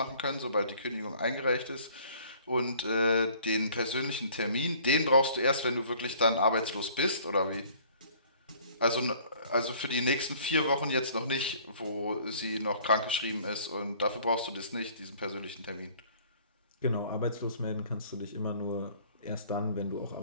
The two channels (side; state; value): both; inverted; correlation -0.55